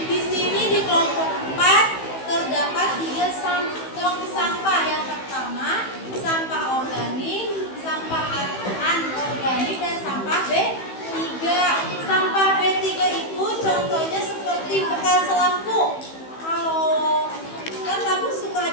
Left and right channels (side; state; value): right; late; 15 ms